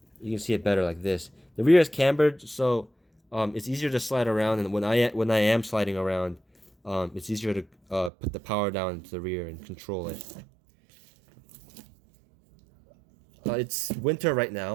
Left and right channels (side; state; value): left; drops out; at 8.1 s